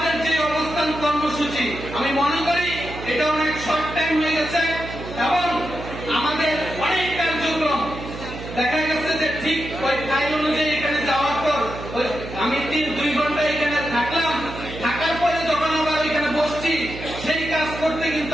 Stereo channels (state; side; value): noise; right; hum, 10 dB below the sound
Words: যে অবস্থান কর্মসূচি, আমি মনে করি এটা অনেক শর্ট টাইম হয়ে গেছে এবং আমাদের অনেক কার্যক্রম দেখা গেছে যে ঠিক ওই ফাইল অনুযায়ী এখানে যাওয়ার পর আমি 2 ঘন্টা এখানে থাকলাম, থাকার পরে যখন আবার এখানে বসছি সেই কাজ করতে